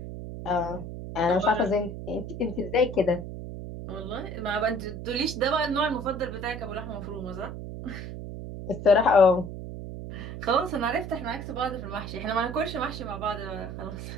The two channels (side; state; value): right; noise; hum, 8 dB below the sound